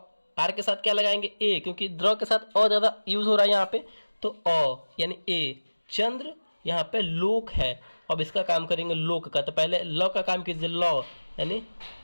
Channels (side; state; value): both; inverted; correlation -1.00